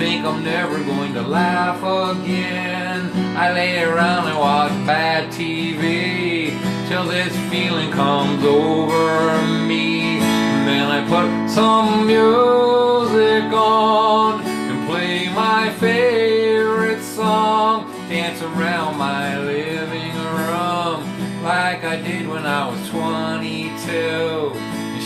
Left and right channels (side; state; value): both; identical; correlation 1.00